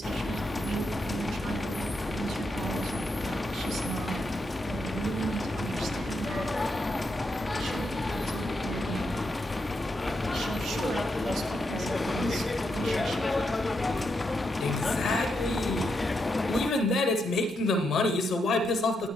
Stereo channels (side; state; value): both; normal; correlation 0.82